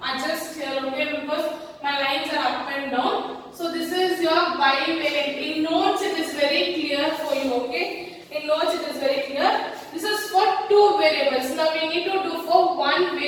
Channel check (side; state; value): both; identical; correlation 1.00